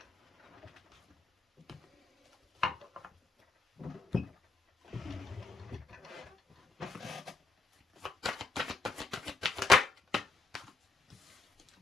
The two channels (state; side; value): quieter; right; 3.9 dB